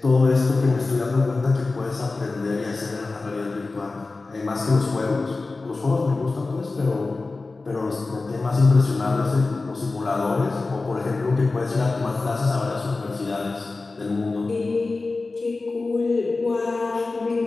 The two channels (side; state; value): right; quieter; 3.6 dB